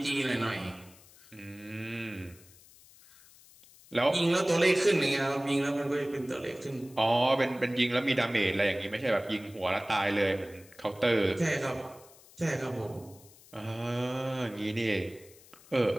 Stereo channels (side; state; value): left; noise; hiss, 24 dB below the sound